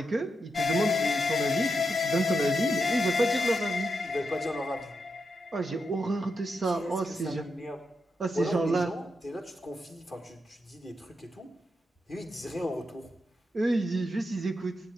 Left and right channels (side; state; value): both; normal; correlation 0.84